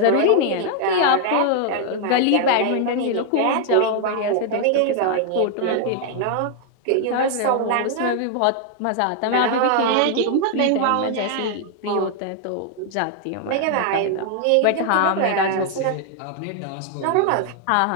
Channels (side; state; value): both; different; correlation 0.00